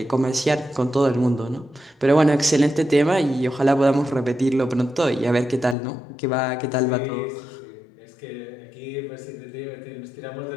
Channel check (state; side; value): drops out; right; at 5.8 s